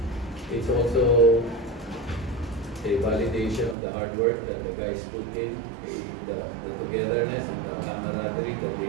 It's also a validation of the hard work that the guys put in, the togetherness and the camaraderie that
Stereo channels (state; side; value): drops out; left; at 3.8 s